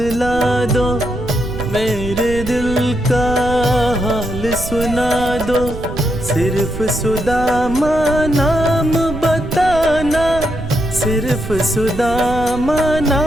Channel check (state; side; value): noise; right; rumble, 9 dB below the sound